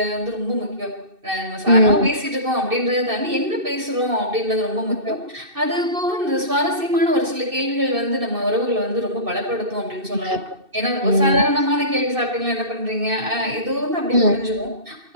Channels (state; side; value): late; left; 2.6 ms